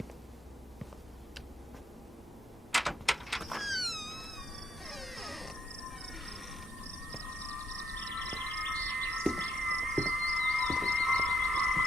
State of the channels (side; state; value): both; normal; correlation 0.73